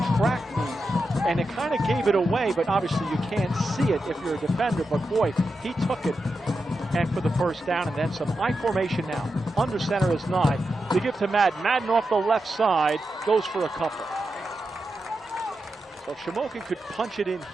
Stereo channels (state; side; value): normal; both; correlation 0.88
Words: track meet, and it kind of gave it away. But obviously, you can't see it if you're a defender. But boy, he took it, and for the first down, and then some. I formation now. Under center is Nye. They give to Madden. Madden off the left side goes for a couple. So if Shamokin could punch it in